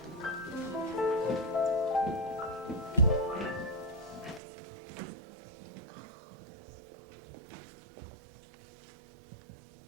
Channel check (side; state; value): left; drops out; at 4.4 s